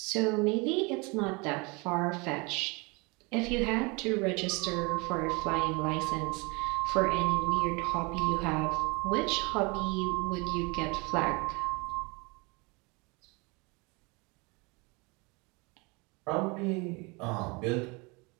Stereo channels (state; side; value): quieter; left; 27.8 dB